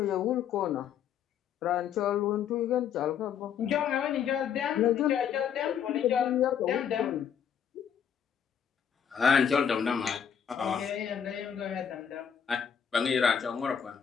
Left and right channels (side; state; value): right; quieter; 8.1 dB